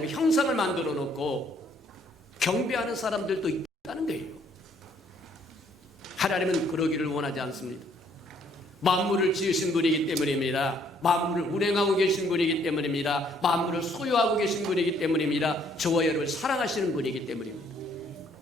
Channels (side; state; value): both; normal; correlation 0.65